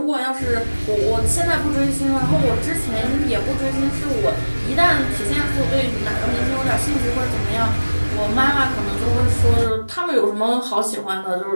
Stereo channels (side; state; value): both; inverted; correlation -1.00